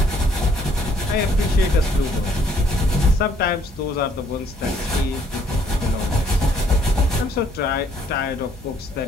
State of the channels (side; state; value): both; normal; correlation 0.65